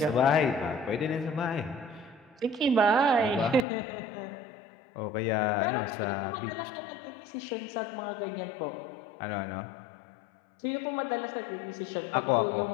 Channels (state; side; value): drops out; right; at 3.7 s